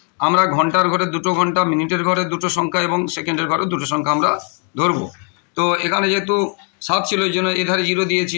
আমরা ঘন্টার ঘরে 2 ঘন্টা, মিনিটের ঘরে 2 সংখ্যা, এবং সেকেন্ডের ঘরে 2 সংখ্যা আমরা ধরবো। তো এখানে যেহেতু 7 ছিল, এই জন্য এধারে 0 দিয়েছি,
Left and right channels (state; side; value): quieter; right; 39.7 dB